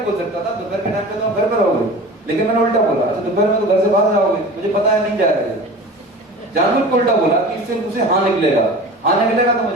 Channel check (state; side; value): normal; both; correlation 0.37